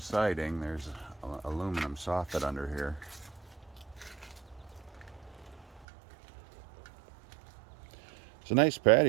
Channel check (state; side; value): drops out; left; at 5.9 s